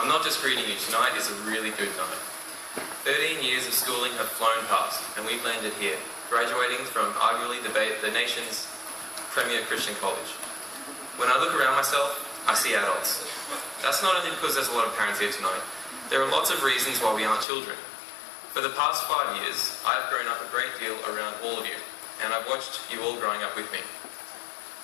not just greeting you. Tonight is a really good night. 13 years of schooling have flown past, and we've landed here, graduating from arguably the nation's premier Christian college. When I look around myself, I see adults. That's not only because there's a lot of parents here tonight. There are lots of reasons why we aren't children. For the past 5 years, I've grown up a great deal around all of you, and I've watched you all growing up with me.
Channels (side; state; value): right; drops out; at 17.4 s